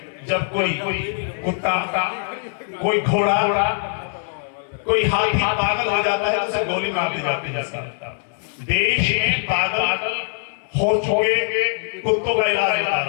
जब कोई कुत्ता, कोई घोड़ा, कोई हाथी पागल हो जाता है तो उसे गोली मार दी जाती है। देश में पागल हो चुके कुत्तों का इलाज होता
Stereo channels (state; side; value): silent; right; 64 dB below the other